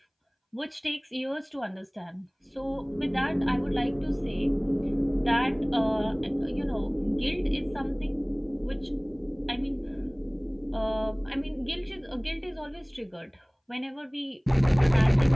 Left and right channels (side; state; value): both; identical; correlation 1.00